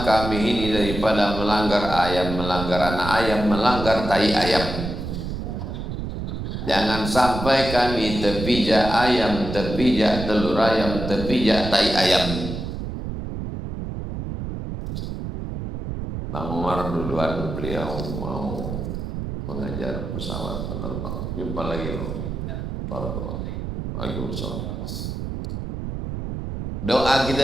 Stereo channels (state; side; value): noise; right; rumble, 6 dB below the sound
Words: kami ini daripada melanggar ayam, melanggar anak ayam, melanggar tai ayam. Jangan sampai kami terpijak ayam, terpijak telur ayam, terpijak tai ayam. Bang Umar duluan, beliau mau mengajar pesawat penerbang. Jumpa lagi loh. Waalaikumsalam. Doa